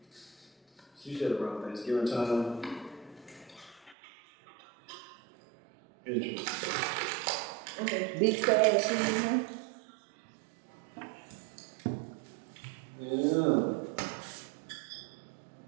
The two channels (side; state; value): left; drops out; at 4.0 s